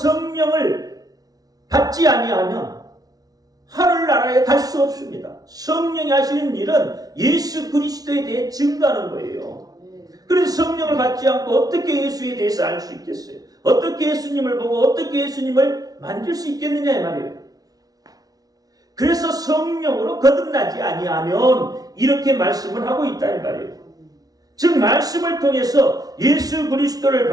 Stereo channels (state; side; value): late; left; 0.18 ms